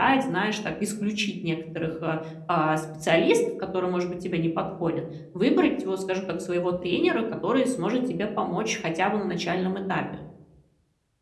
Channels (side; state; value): both; identical; correlation 1.00